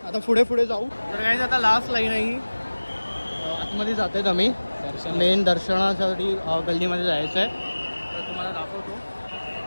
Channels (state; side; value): inverted; both; correlation -1.00